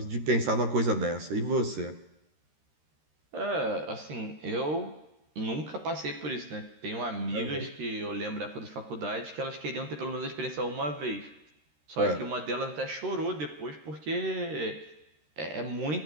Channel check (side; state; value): left; late; 13 ms